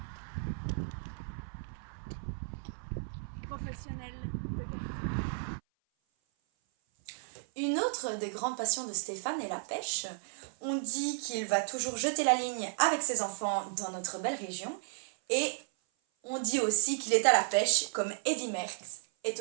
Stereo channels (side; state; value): left; silent; 55 dB below the other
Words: professionnel de karting. Une autre des grandes passions de Stéphane est la pêche. On dit qu'il va toujours jeter la ligne avec ses enfants dans notre belle région. Et on dit aussi qu'il est à la pêche comme Eddy Merckx est